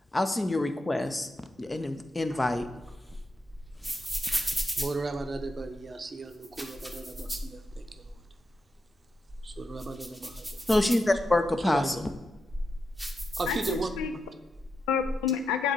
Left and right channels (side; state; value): both; normal; correlation 0.86